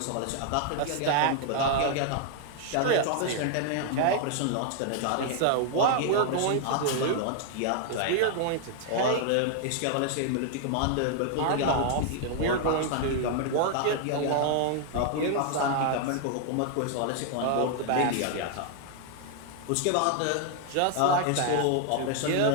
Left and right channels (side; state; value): both; different; correlation 0.00